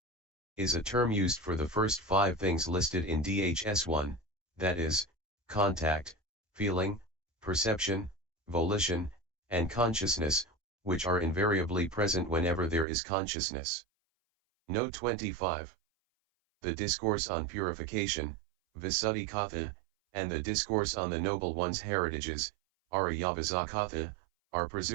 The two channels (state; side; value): drops out; left; at 12.9 s